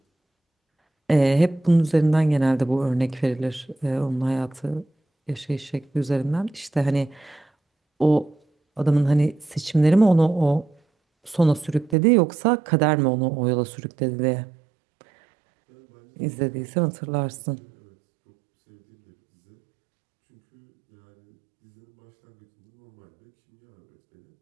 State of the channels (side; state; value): left; drops out; at 12.0 s